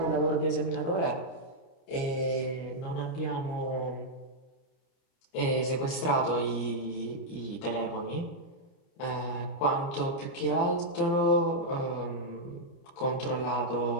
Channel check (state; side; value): late; right; 29 ms